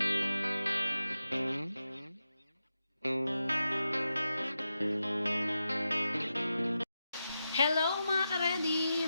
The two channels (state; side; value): inverted; both; correlation -0.89